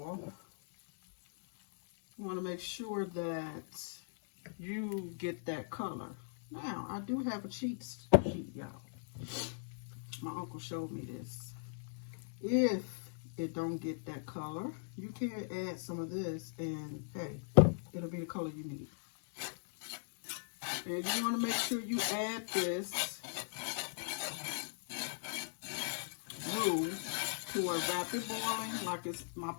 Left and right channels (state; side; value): silent; right; digital silence